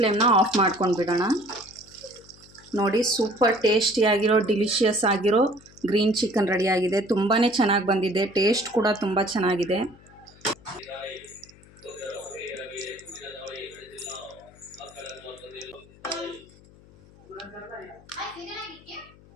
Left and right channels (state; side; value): noise; left; hum, 24 dB below the sound